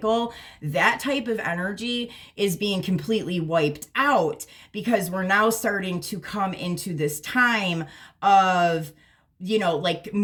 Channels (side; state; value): both; identical; correlation 1.00